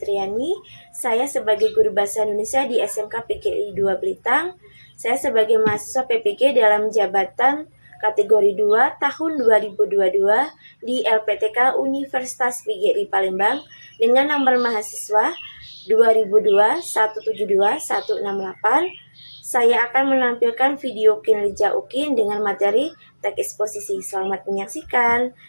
Saya sebagai guru bahasa Indonesia di SMK PGRI 2 Blitang. Saya sebagai mahasiswa PPG dalam jabatan kategori 2 tahun 2022 di LPTK Universitas PGRI Palembang dengan nomor mahasiswa 2002 172 168. Saya akan menampilkan video kinerja UKIN dengan materi teks eksposisi. Selamat menyaksikan.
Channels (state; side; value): inverted; both; correlation -1.00